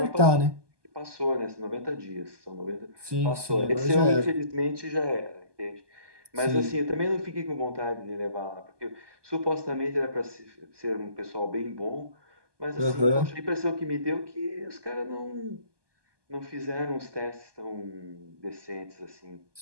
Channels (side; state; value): left; late; 1.2 ms